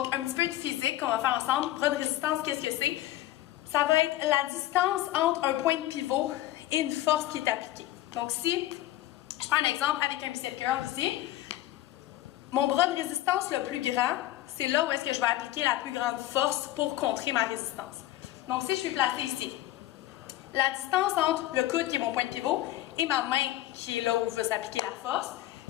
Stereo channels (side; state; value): right; quieter; 14.9 dB